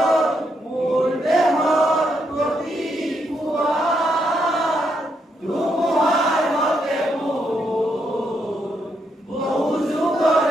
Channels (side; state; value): both; normal; correlation 0.78